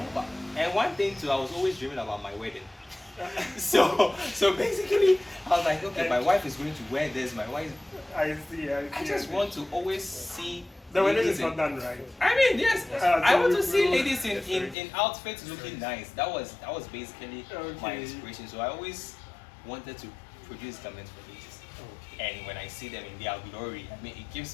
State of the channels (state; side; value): drops out; right; at 14.8 s